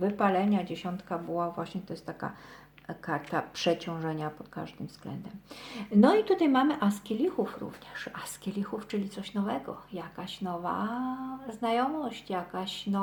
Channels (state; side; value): identical; both; correlation 1.00